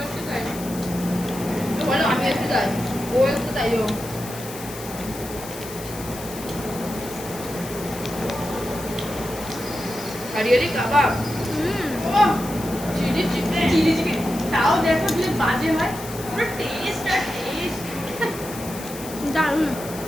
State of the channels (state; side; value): noise; left; hiss, 13 dB below the sound